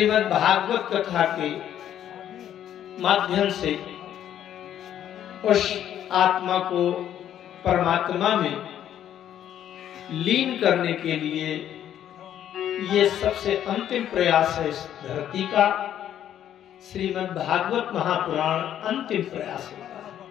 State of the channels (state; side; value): quieter; right; 10.7 dB